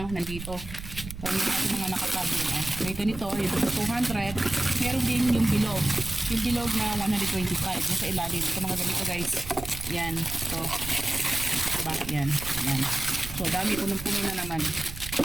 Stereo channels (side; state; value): right; noise; rumble, 11 dB below the sound